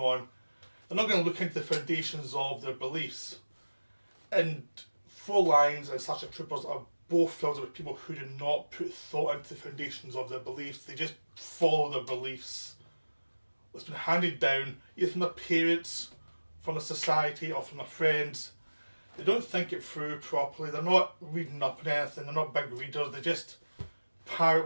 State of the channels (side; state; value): both; inverted; correlation -1.00